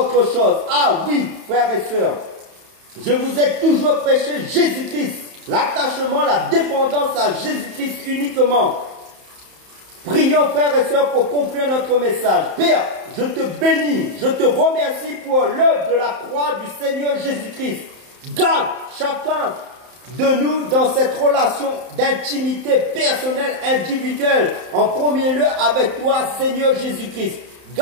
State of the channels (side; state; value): left; late; 31 ms